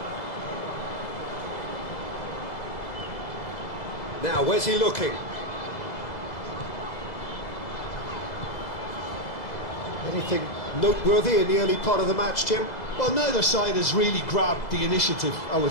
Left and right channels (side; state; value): right; late; 2.0 ms